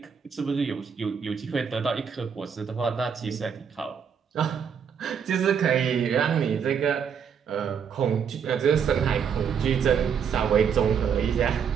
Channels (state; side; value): quieter; left; 7.1 dB